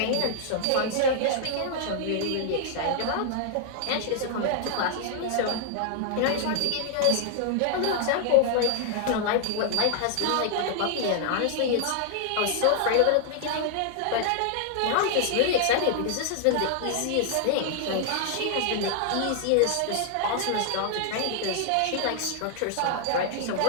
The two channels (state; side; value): different; both; correlation 0.00